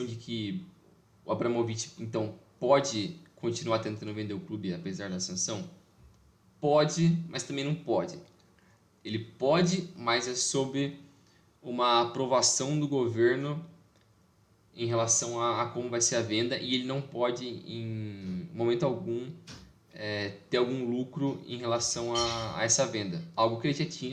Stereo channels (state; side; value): identical; both; correlation 1.00